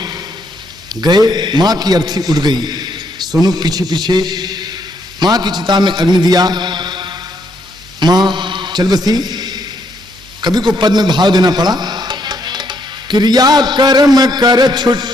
गए। माँ की अर्थी उड़ गई, सोनू पीछे पीछे माँ की चिता में अग्नि दिया। माँ चल बसी। कभी को पद में भाव देना पड़ा, क्रिया कर्म कर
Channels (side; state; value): both; normal; correlation 0.73